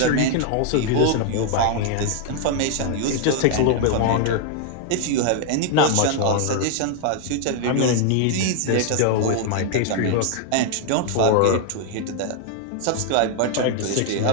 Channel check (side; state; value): both; different; correlation 0.00